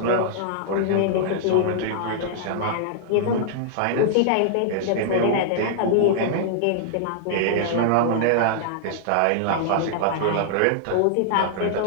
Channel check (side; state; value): both; different; correlation -0.01